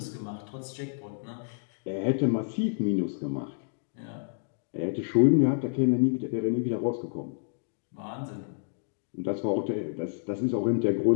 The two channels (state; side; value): silent; right; digital silence